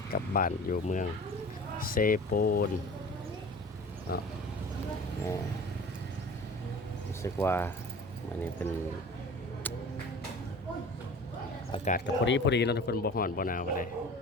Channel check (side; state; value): both; normal; correlation 0.41